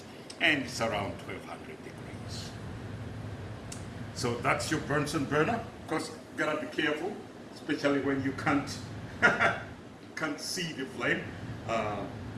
and it's around 1200 degrees. So that's your Bunsen burner. Of course, you gotta be careful, especially when you can't see the flame,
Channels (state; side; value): identical; both; correlation 1.00